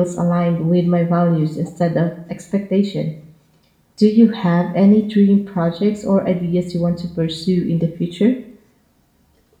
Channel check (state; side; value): identical; both; correlation 1.00